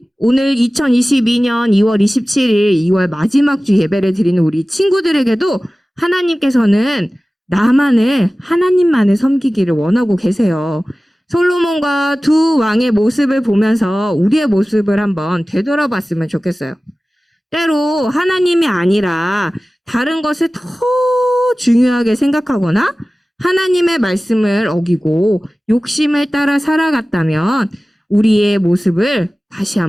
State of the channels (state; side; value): normal; both; correlation 0.97